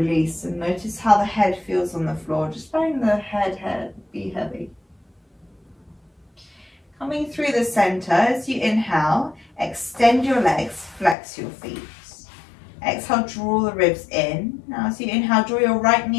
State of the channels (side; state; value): right; drops out; at 11.2 s